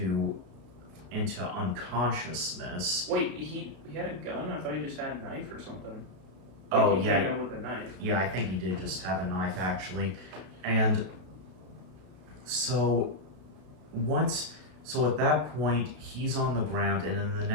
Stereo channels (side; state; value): left; late; 33 ms